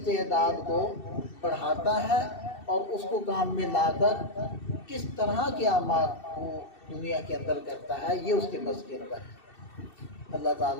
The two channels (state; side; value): late; right; 2.7 ms